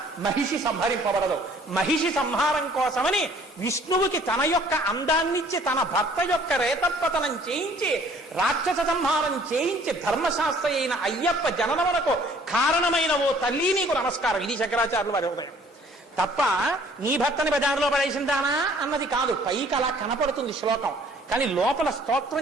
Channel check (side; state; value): both; normal; correlation 0.56